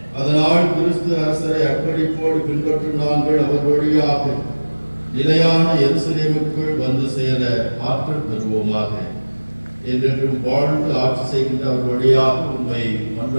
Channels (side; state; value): both; inverted; correlation -1.00